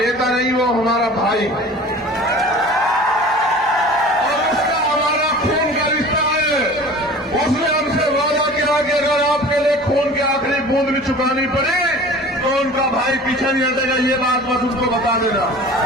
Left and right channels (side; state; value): both; normal; correlation 0.41